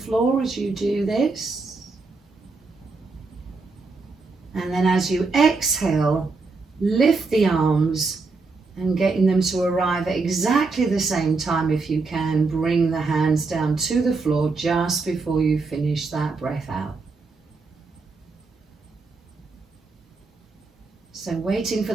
as you do this. And then as you exhale, lift the arms and getting them to arrive at exactly the same time if you can. Bring the hands down to the floor just before you finish that breath out. So waiting for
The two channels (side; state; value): left; quieter; 4.0 dB